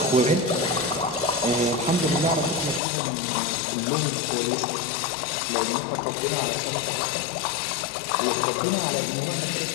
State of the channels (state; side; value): drops out; right; at 2.8 s